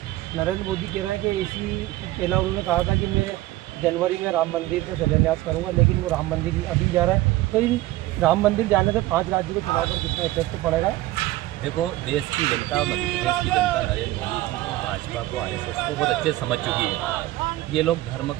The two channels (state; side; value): quieter; left; 17.1 dB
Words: नरेंद्र मोदी कह रहे हैं कि इसी पहला उन्होंने कहा था कि मैं जनवरी में राम मंदिर का शिलान्यास करूँगा, लेकिन वो राम मंदिर अभी जा रहा है। तो इन राम मंदिर जाने से 5 राज्यों के चुनाव पर कितना इफेक्ट पड़ेगा? देखो, देश की जनता, मध्य प्रदेश की जनता नरेंद्र मोदी जी को, भाजपा को, आरएसएस को बहुत अच्छे समझ चुकी है। ये लोग धर्म